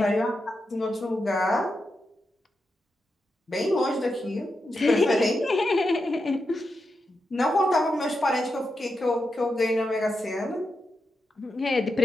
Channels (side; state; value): both; normal; correlation 0.87